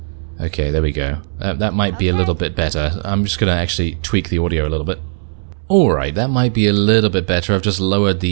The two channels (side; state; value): left; silent; 68 dB below the other